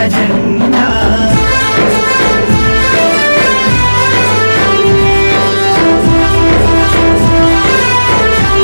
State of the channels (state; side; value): inverted; both; correlation -1.00